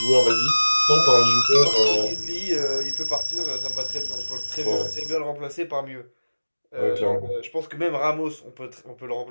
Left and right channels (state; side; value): inverted; both; correlation -1.00